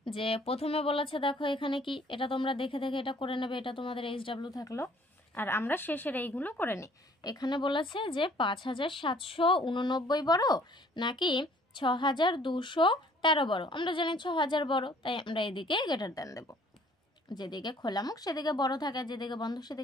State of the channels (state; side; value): normal; both; correlation 0.57